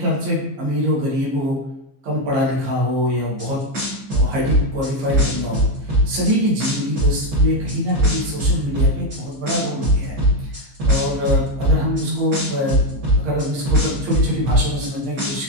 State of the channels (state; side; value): late; left; 15 ms